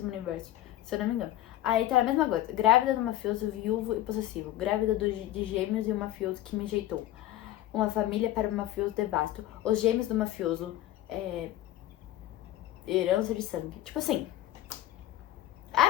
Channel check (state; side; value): quieter; right; 14.0 dB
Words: universo. Se eu não me engano. Aí tá a mesma coisa. Grávida do mafioso, viúvo e possessivo. Grávida de gêmeos e um mafioso que me rejeitou. Uma família para um mafioso devasto. Os gêmeos do mafioso. Herança de sangue. Tipo assim. É a